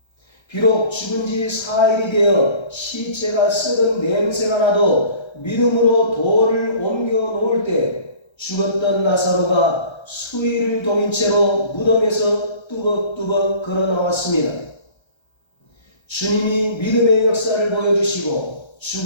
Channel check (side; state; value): right; late; 1.3 ms